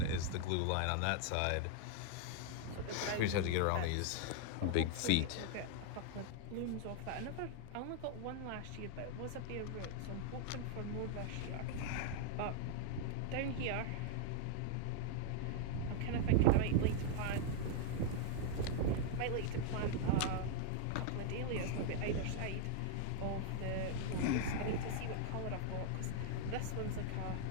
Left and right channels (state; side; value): different; both; correlation 0.00